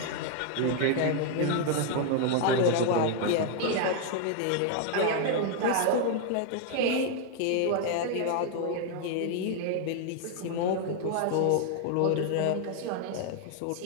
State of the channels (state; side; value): different; both; correlation 0.00